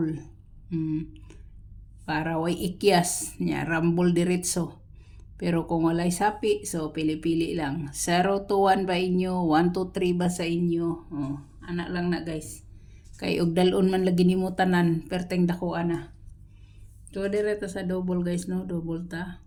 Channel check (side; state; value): both; identical; correlation 1.00